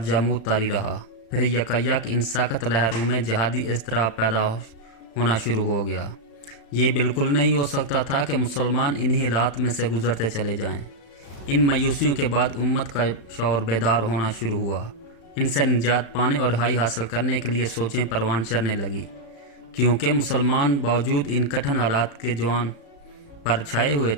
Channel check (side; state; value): right; late; 35 ms